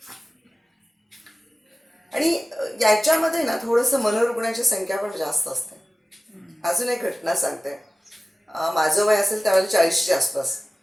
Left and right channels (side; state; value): both; normal; correlation 0.96